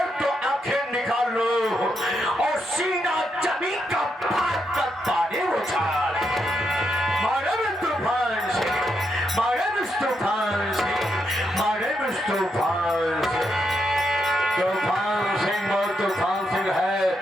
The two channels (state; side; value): normal; both; correlation 0.81